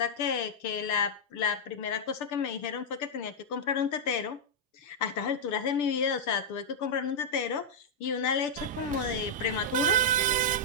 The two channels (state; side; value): normal; both; correlation -0.06